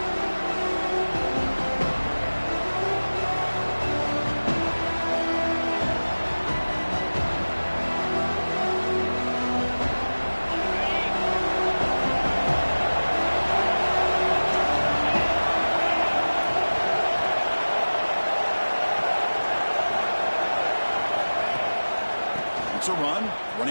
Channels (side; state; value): both; inverted; correlation -1.00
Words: It's a run.